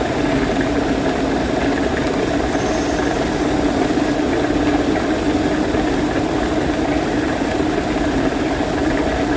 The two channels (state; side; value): identical; both; correlation 1.00